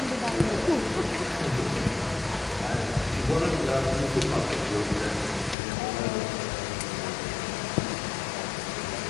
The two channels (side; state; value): right; drops out; at 5.6 s